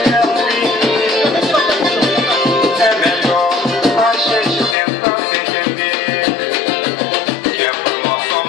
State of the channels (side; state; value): right; drops out; at 4.8 s